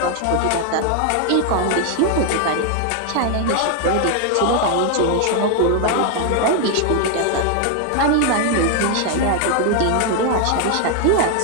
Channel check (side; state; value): both; different; correlation 0.00